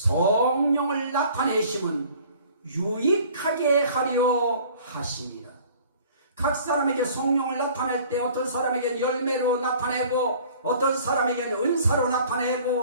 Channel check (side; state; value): both; inverted; correlation -0.51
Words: 나타내심은 유익하게 하려 하시니라. 각 사람에게 성령을 나타낼 때 어떤 사람에게는 열매로 나타내고 어떤 사람에게는 은사로